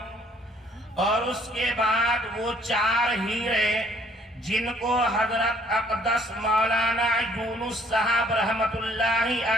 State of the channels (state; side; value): normal; both; correlation 0.61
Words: اور اس کے بعد وہ 4 ہیرے جن کو حضرت اقدس مولانا یونس صاحب رحمت اللہ